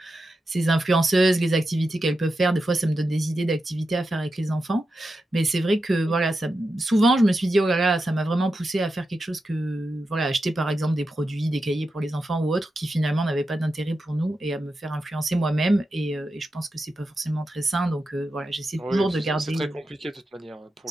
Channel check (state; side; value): normal; both; correlation 0.89